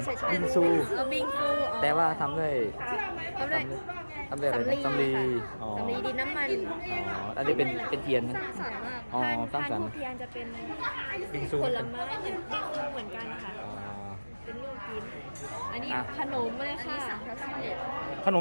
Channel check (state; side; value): inverted; both; correlation -1.00